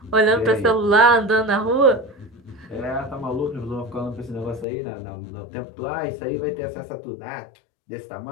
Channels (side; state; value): right; drops out; at 4.7 s